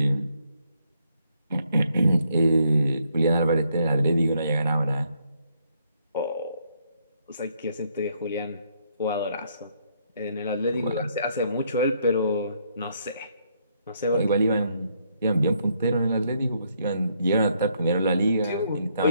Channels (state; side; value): inverted; both; correlation -0.72